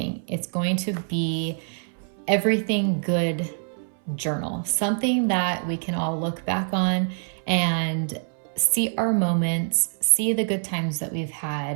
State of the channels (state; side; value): silent; left; 60 dB below the other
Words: It's going to be everything good journal, something that we can all look back on and see our moments, see the good times that we've